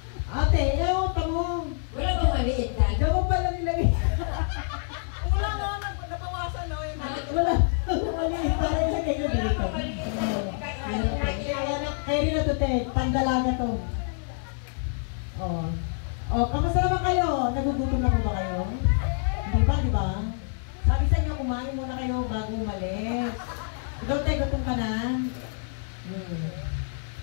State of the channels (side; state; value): right; silent; digital silence